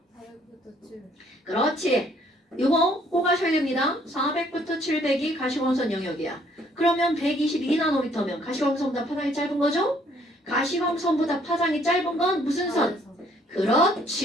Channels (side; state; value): both; normal; correlation 0.64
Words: 400부터 700. 그렇지. 이거 꼭 아셔야 됩니다. 400부터 700이 가시광선 영역이야. 그러면 122나노미터면 가시광선보다 파장이 짧은 거죠? 가시광선보다 파장이 짧은 건 무슨 선?